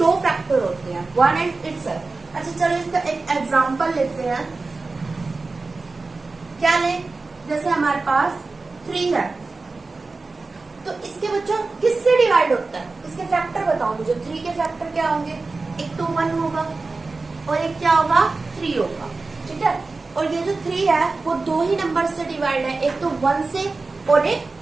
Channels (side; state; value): left; quieter; 3.7 dB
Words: फैक्टर होते हैं, 1 एंड इटसेल्फ. अच्छा चलो इसका एक एग्जाम्पल लेते हैं. क्या ले? जैसे हमारे पास 3 है तो इसके बच्चों किससे डिवाइड होता है? इसके फैक्टर बताओ मुझे. 3 के फैक्टर क्या होंगे? एक तो 1 होगा और एक क्या होगा? 3 होगा. ठीक है, और ये जो 3 है वो 2 ही नंबर से डिवाइड है, एक तो 1 से और एक